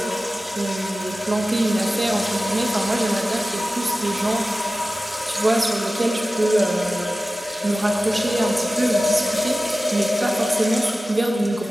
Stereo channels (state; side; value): normal; both; correlation 0.96